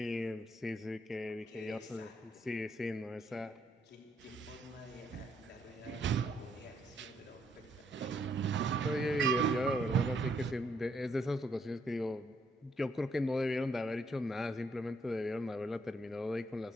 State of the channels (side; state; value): both; normal; correlation 0.73